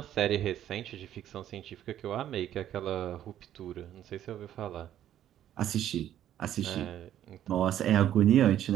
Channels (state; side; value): quieter; left; 11.3 dB